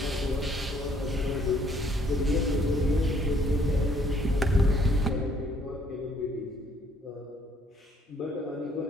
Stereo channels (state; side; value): normal; both; correlation 0.64